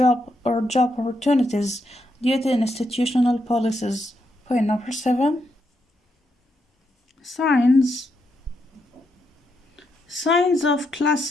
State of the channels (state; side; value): normal; both; correlation 0.81